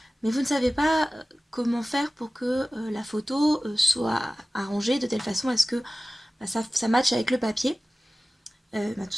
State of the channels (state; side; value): normal; both; correlation 0.97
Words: mais vous ne savez pas comment faire pour que la photo soit arrangée de telle façon à ce que ça matche avec le papier. Tout